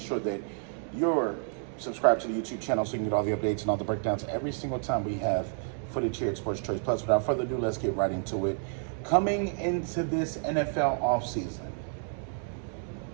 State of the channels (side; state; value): left; silent; 57 dB below the other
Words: that you're subscribed to the YouTube channel so you can get all the updates and all the breakdowns every single time we have footage here at Sports Choice Plus. Without further ado, let's get right into it. Coming into this NFL offseason,